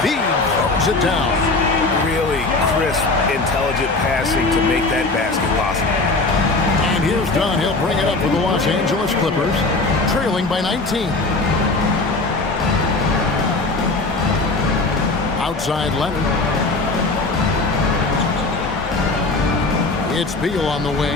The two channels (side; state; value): right; quieter; 3.4 dB